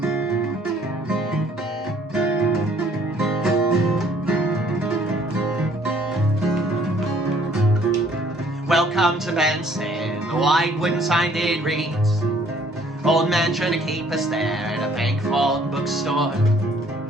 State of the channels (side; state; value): both; normal; correlation 0.61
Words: Welcome to Benson, the white wooden sign did read. Old man trying to keep us there at a bank-vault bookstore.